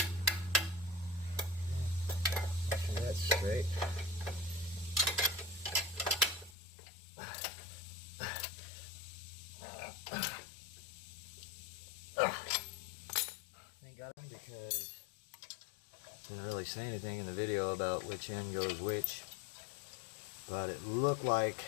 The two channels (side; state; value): right; drops out; at 6.6 s